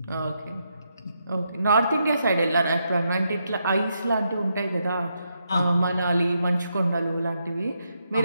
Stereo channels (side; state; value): both; inverted; correlation -0.81